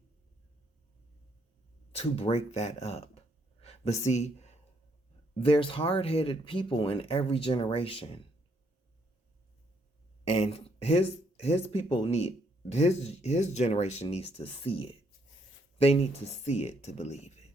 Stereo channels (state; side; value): normal; both; correlation 0.72